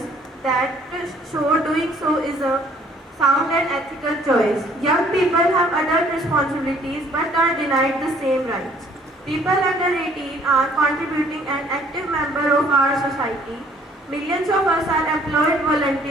that show doing so is a sound and ethical choice. Young people have adult responsibilities but are denied the same rights. People under 18 are contributing an active member of our society. Millions of us are employed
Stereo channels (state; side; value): normal; both; correlation 0.59